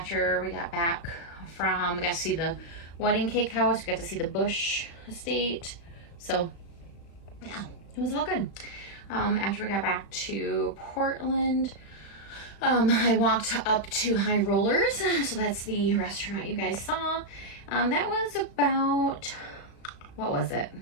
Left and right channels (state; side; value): late; right; 36 ms